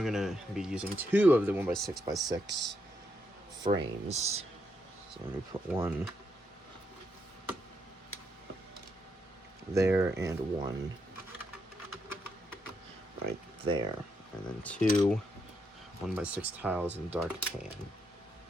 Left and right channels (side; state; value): both; normal; correlation 0.79